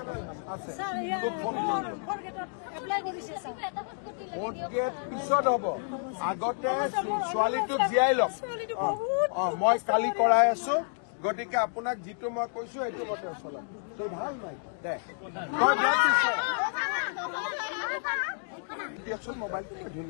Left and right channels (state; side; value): silent; right; digital silence